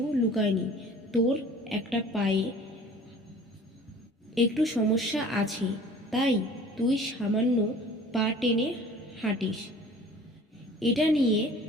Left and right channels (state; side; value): normal; both; correlation 0.47